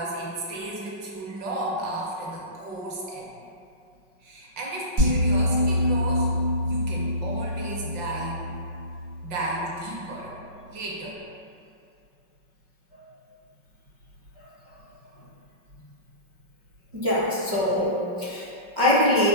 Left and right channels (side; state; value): left; late; 5.4 ms